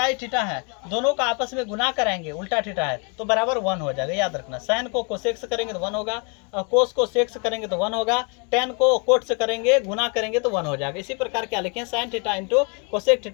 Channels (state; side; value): quieter; right; 35.2 dB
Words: थीटा है दोनों का आपस में गुना कराएंगे, उल्टा थीटा है तो बराबर 1 हो जाएगा, याद रखना। साइन को कोसेक से करेंगे तो 1 होगा, कोस को सेक से करेंगे तो 1 होगा, टेन को कोट से करेंगे गुना करेंगे तो 1 हो जाएगा। इसी प्रकार क्या लिखे हैं, sign theta into cosec